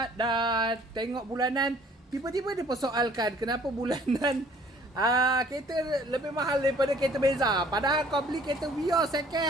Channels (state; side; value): normal; both; correlation 0.56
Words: dah tengok bulanan, tiba-tiba dia persoalkan kenapa bulanan kereta lebih mahal daripada kereta Beza. Padahal kau beli kereta Vios second